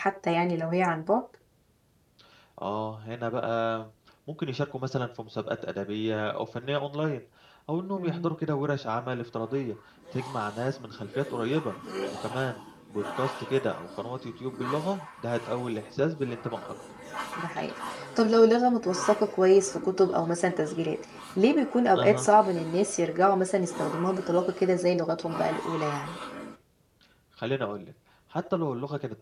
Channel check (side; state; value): both; identical; correlation 1.00